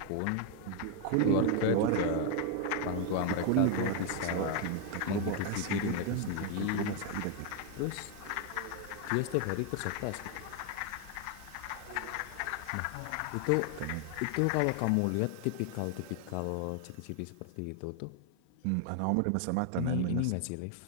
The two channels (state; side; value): different; both; correlation 0.01